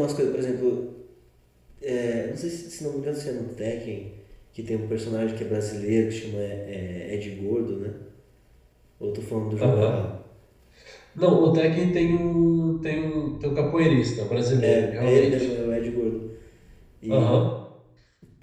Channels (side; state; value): both; identical; correlation 1.00